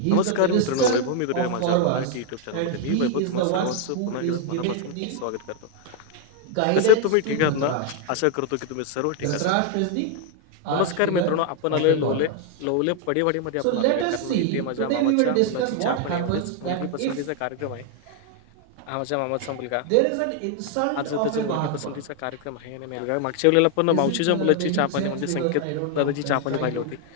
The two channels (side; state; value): both; different; correlation 0.00